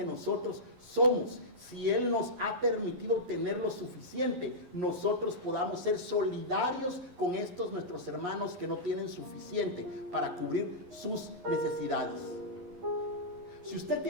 nosotros somos, si Él nos ha permitido tener lo suficiente, nosotros podamos ser solidarios con estos nuestros hermanos que no tienen suficiente para cubrir sus necesidades. Si usted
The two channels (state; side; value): late; left; 11 ms